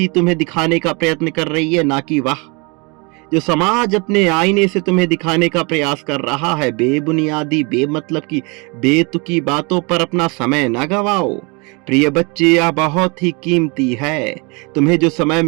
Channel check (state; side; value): quieter; left; 29.9 dB